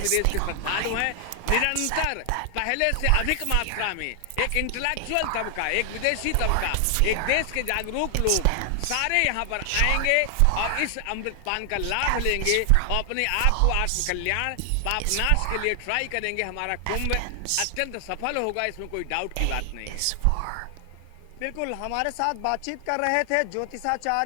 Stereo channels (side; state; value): both; different; correlation 0.00